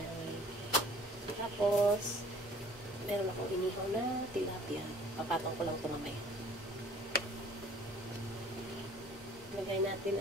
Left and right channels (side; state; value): both; normal; correlation 0.52